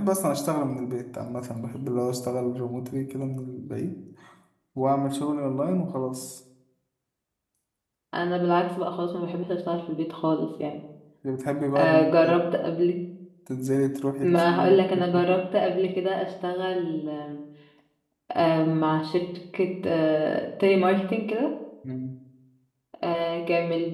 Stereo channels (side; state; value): both; identical; correlation 1.00